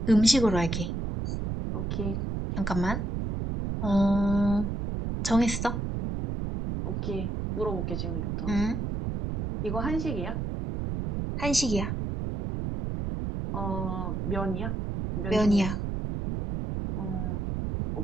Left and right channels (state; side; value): noise; right; rumble, 2 dB below the sound